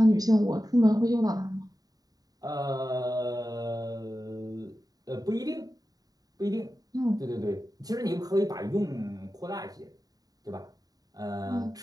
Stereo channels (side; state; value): left; late; 0.18 ms